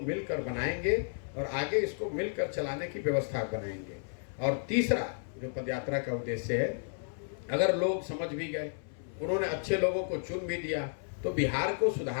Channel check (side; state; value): right; silent; 56 dB below the other